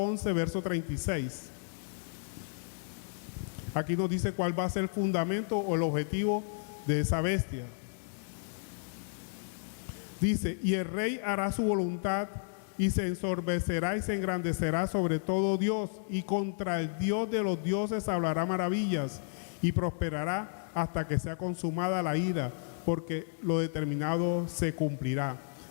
11, verso 36. Aquí nos dice cuál va a ser el fundamento o el objetivo de esa bestia. Dice: y el rey hará su voluntad, y se ensorbecerá y se engrandecerá sobre todo Dios, y contra el Dios de los dioses hablará maravillas, y prosperará hasta que sea consumada la ira, porque lo determinado se cumplirá.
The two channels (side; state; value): right; silent; digital silence